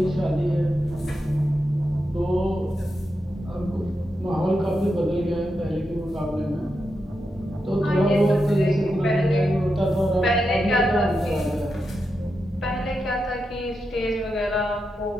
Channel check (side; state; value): both; normal; correlation 0.87